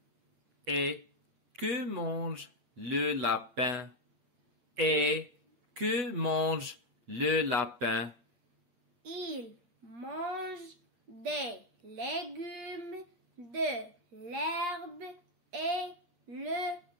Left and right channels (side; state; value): left; late; 8.6 ms